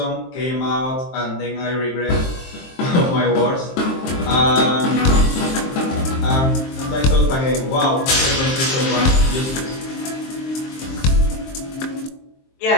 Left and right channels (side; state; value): right; late; 23 ms